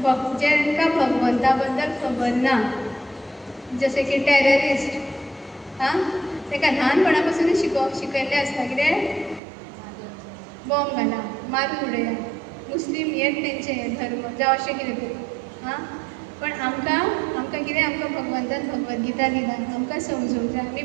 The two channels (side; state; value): left; drops out; at 9.4 s